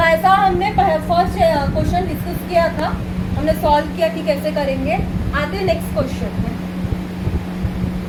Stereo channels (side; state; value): both; identical; correlation 1.00